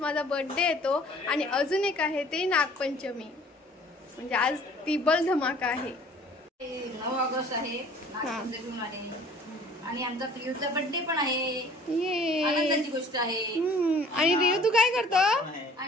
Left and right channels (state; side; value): normal; both; correlation 0.52